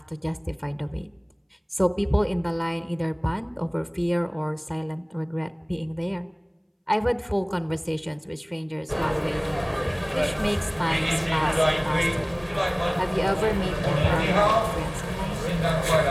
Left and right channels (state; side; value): identical; both; correlation 1.00